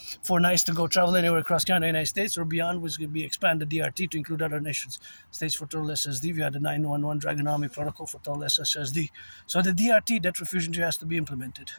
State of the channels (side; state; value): both; inverted; correlation -1.00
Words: 4 nights to go travel anywhere across Canada and the United States or beyond, which will be expanded DRT to include other nations. States for total SSD via the 911 Dragon Army protocol for total SSSD. So the DRT, debt refusion, has to be implemented.